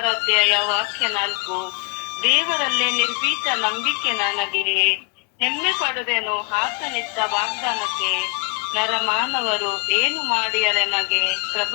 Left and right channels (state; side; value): quieter; right; 31.9 dB